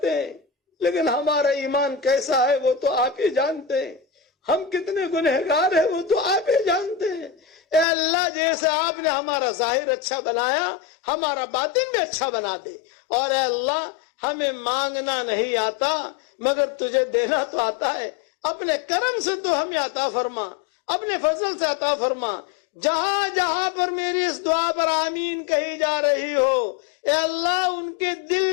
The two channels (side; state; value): right; drops out; at 7.9 s